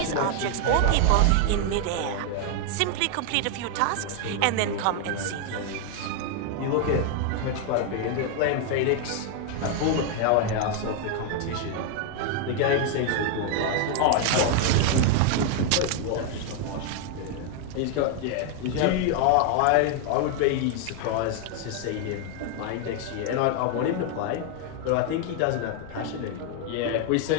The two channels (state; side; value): different; both; correlation 0.00